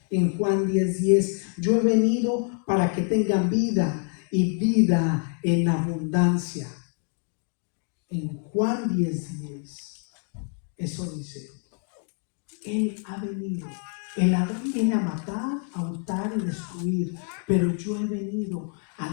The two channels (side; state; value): right; quieter; 39.0 dB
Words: En Juan 10:10, yo he venido para que tengan vida y vida en abundancia. En Juan 10:10, eso dice, Él ha venido. El Adán viene a matar, a hurtar y destruir, pero yo he venido a